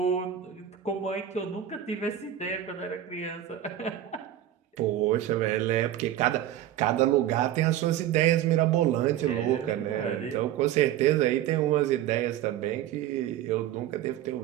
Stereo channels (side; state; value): left; quieter; 11.6 dB